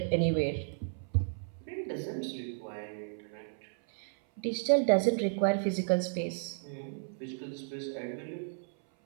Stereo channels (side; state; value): left; silent; 56 dB below the other